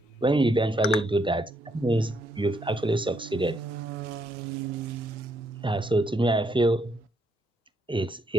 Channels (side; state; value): both; normal; correlation 0.74